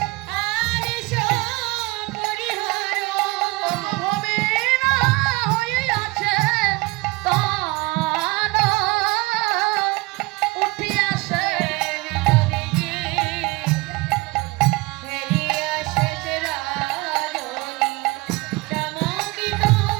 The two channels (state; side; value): quieter; left; 23.4 dB